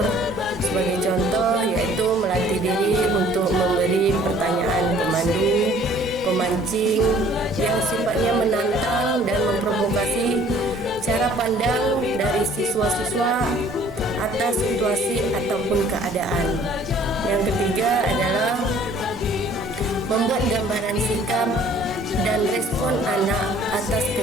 Sebagai contoh yaitu melatih diri untuk memberi pertanyaan pemandu, pemancing yang sifatnya menantang dan memprovokasi cara pandang dari siswa-siswa atas situasi ataupun keadaan. Yang ketiga adalah membuat gambaran sikap dan respon anak atas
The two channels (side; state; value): both; normal; correlation 0.55